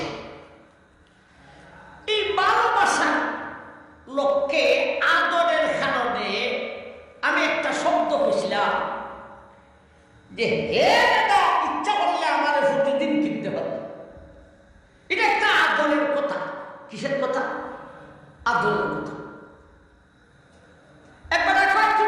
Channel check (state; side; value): identical; both; correlation 1.00